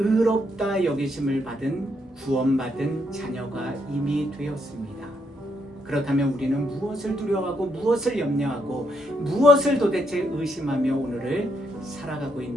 여기심을 받은 구원받은 자녀가 이미 되었습니다. 그렇다면 우리는 무엇을 두려워하고 무엇을 염려하고 무엇을 도대체 의심하며 오늘을 살아가고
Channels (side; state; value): both; normal; correlation 0.77